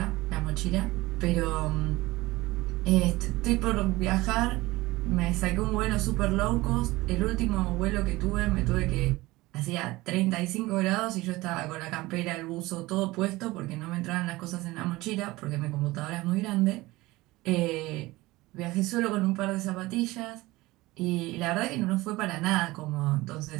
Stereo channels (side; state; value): left; quieter; 19.9 dB